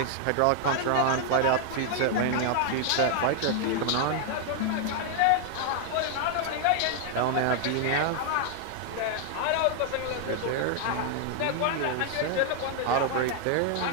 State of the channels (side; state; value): both; different; correlation 0.00